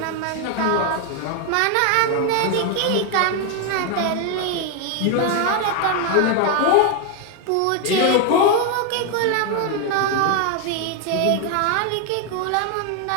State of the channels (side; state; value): both; different; correlation 0.01